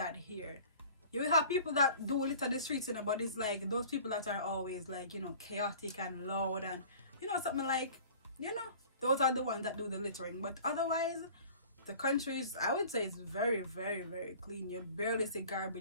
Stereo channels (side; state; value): both; inverted; correlation -0.45